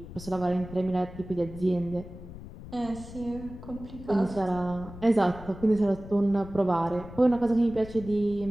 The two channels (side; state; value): left; noise; rumble, 14 dB below the sound